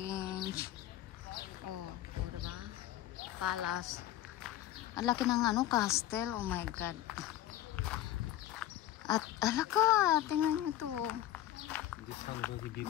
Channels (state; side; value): quieter; right; 13.0 dB